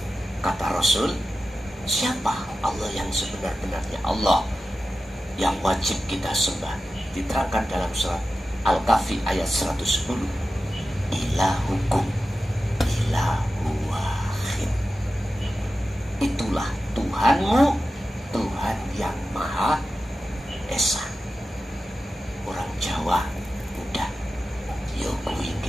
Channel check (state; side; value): normal; both; correlation 0.93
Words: Kata Rasul, siapa Allah yang sebenar-benarnya Allah yang wajib kita sembah? Diterangkan dalam surat Al-Kahfi ayat 110. Ilahukum ilahu wahid. Itulah Tuhanmu, Tuhan yang Maha Esa. Orang Jawa udah yo